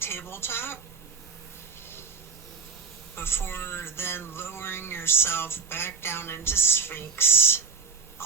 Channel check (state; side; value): quieter; left; 5.1 dB